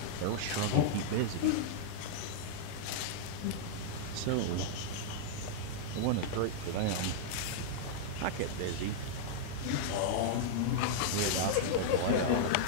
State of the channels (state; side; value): different; both; correlation -0.02